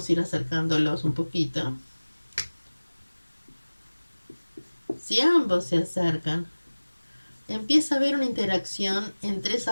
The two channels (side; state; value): both; inverted; correlation -1.00